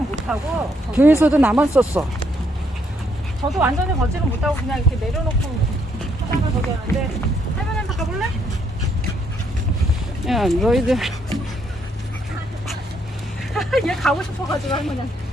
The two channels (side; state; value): both; normal; correlation 0.72